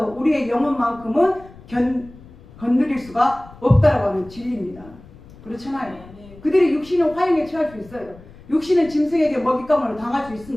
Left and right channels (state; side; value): noise; left; rumble, 21 dB below the sound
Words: 우리의 영혼만큼은 건드릴 수가 없다라고 하는 진리입니다. 그렇잖아요. 그들의 육신은 화형에 처할 수 있어요. 육신은 짐승에게 먹잇감으로 당할 수